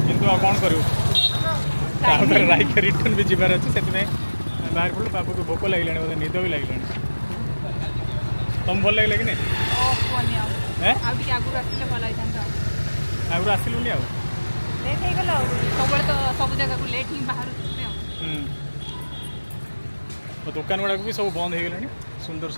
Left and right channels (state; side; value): inverted; both; correlation -1.00